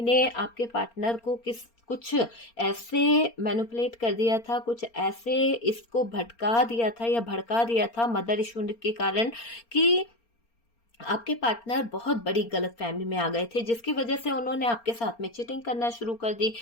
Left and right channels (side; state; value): right; late; 4.3 ms